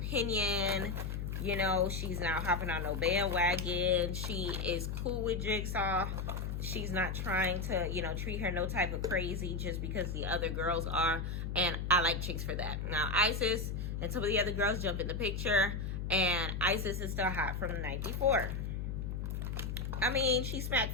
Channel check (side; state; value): left; noise; hum, 3 dB below the sound